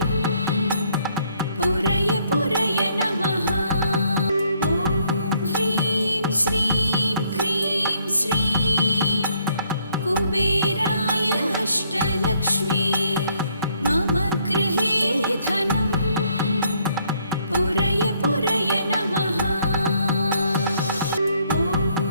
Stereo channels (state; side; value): inverted; both; correlation -0.69